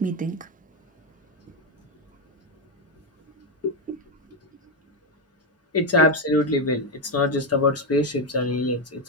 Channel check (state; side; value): normal; both; correlation 0.07